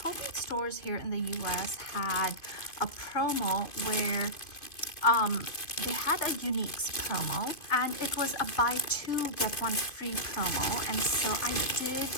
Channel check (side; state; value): right; late; 2.6 ms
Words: stores here in the US had a promo where they had a uniques promo, and it was a buy two get one free promo, and so I did